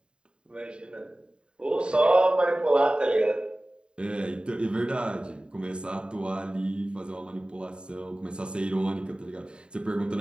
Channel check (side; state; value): left; late; 0.051 ms